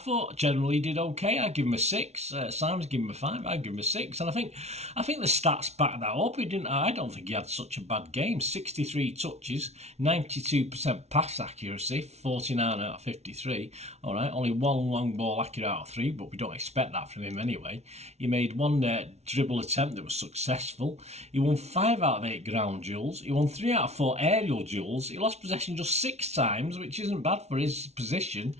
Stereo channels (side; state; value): left; late; 0.31 ms